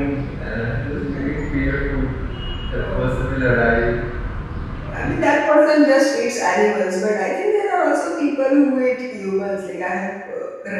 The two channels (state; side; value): identical; both; correlation 1.00